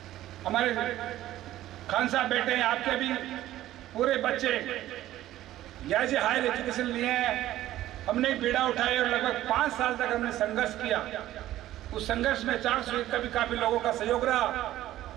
हमारे खान साहब बैठे हैं, आपके भी पूरे बच्चे यहाँ से हायर एजुकेशन लिए हैं। हमने एक बीड़ा उठाया और लगभग 5 साल तक हमने संघर्ष किया। उस संघर्ष में 400 का भी काफी लोगों का सहयोग रहा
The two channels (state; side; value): quieter; left; 14.1 dB